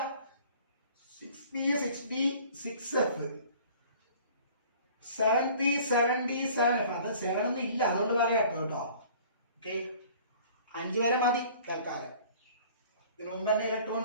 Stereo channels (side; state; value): both; inverted; correlation -0.50